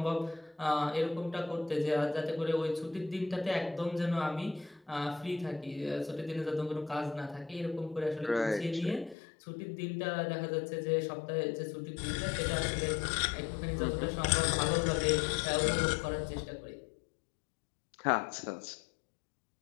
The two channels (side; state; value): right; drops out; at 9.2 s